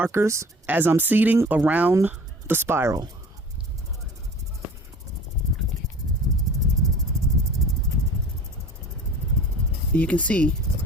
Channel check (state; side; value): normal; both; correlation 0.43